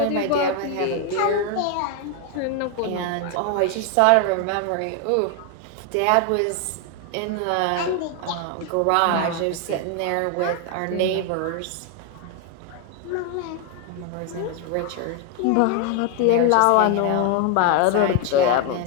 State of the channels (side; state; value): both; different; correlation 0.01